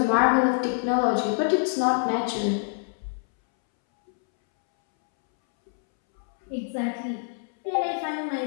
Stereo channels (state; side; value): silent; right; 61 dB below the other